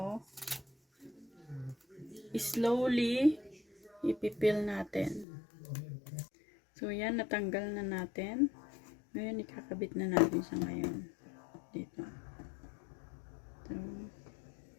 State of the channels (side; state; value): right; drops out; at 5.2 s